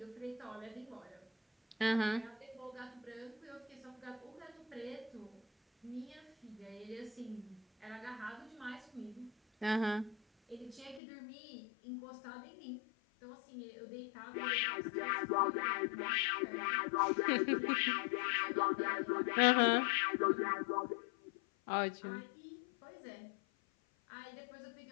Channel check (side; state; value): right; drops out; at 11.0 s